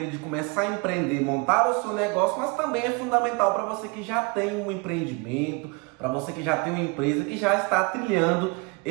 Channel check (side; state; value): left; quieter; 29.9 dB